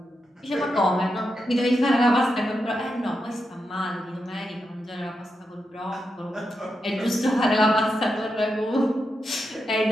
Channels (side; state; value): both; normal; correlation 0.86